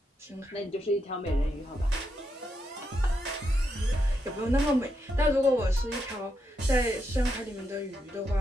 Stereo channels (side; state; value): both; normal; correlation 0.82